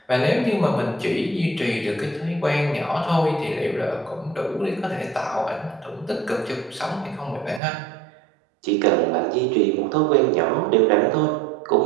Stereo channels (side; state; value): left; drops out; at 7.6 s